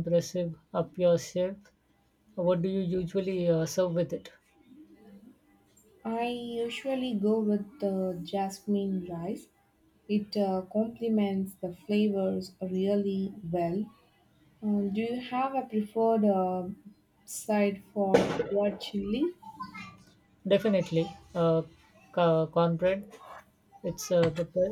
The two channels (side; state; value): both; identical; correlation 1.00